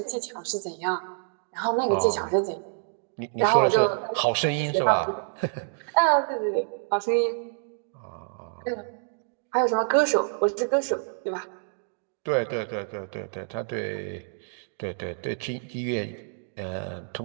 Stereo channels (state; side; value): silent; left; digital silence